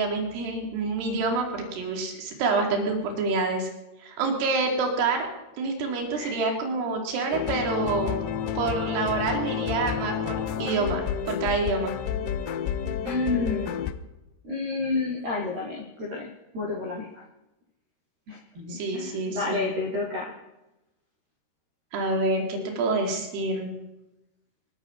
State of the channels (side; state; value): left; late; 13 ms